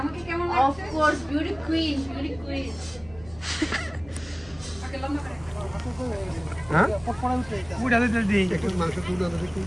আমাকে কেমন লাগছে? Of course, beauty queen, beauty queen. ওকে লম্বা করে। হ্যাঁ? পুরা দিতে দিই। একটু মাংস পুরা দিতে কি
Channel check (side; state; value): right; noise; hum, 21 dB below the sound